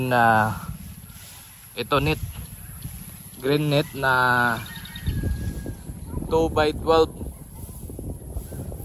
na ito net, green net na 2x12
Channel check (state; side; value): identical; both; correlation 1.00